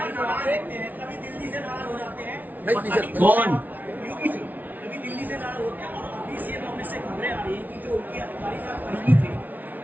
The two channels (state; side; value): late; left; 0.080 ms